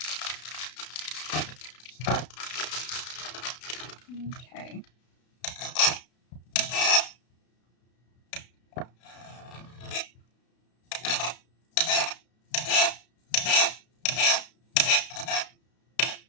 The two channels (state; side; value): late; right; 32 ms